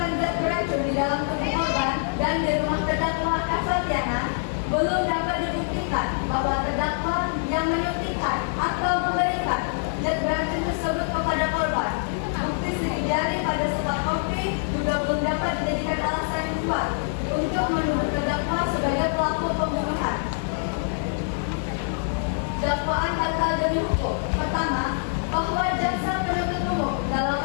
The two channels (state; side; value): silent; right; digital silence